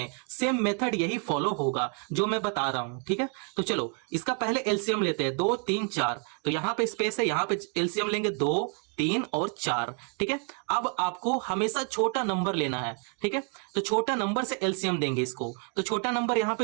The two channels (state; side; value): quieter; left; 39.2 dB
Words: सेम मेथड यही फॉलो होगा जो मैं बता रहा हूं। ठीक है, तो चलो इसका पहले एलसीएम लेते हैं। 2, 3, 4, तो यहां पे स्पेस है, यहां पे एलसीएम लेंगे 2, 3 और 4। ठीक है, अब आपको हमेशा छोटा नंबर लेना है। ठीक है, तो छोटा नंबर से एलसीएम देंगे इसको, तो छोटा नंबर यहाँ